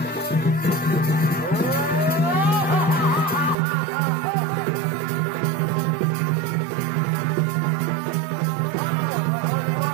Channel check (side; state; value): left; drops out; at 3.6 s